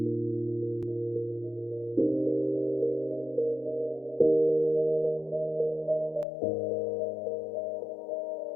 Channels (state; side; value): drops out; right; at 6.2 s